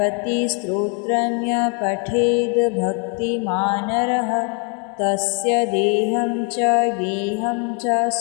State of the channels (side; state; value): right; quieter; 32.8 dB